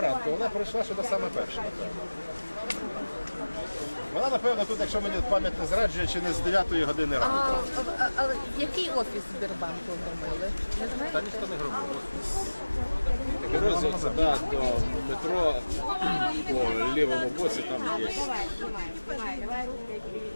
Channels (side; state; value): both; inverted; correlation -1.00